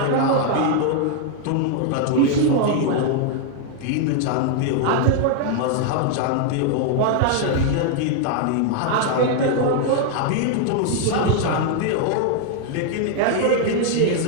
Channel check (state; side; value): different; both; correlation 0.00